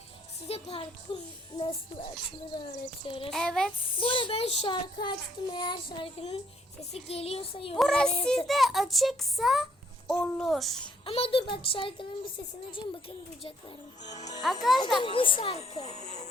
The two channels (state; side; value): normal; both; correlation 0.67